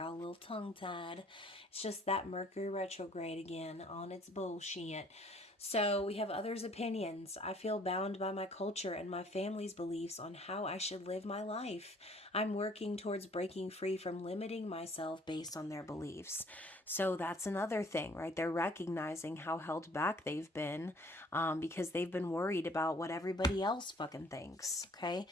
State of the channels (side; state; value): both; normal; correlation 0.57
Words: a little tongue-tied. It's just that Mercury retrograde again on its bullshit. So we have others' opinions. I feel bound by my culture and my family's beliefs on how I should live my life. I'm working towards breaking free from limiting myself based on their beliefs. So that's another thing, right? They're recognizing how held back they've been because they've been worried about what everybody else fucking thinks, okay?